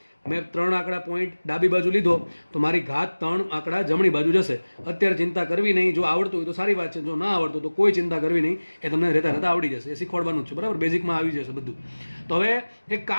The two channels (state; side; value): inverted; both; correlation -1.00